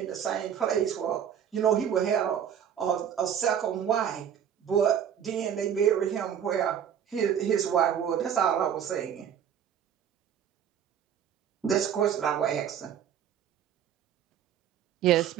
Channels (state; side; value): quieter; left; 8.9 dB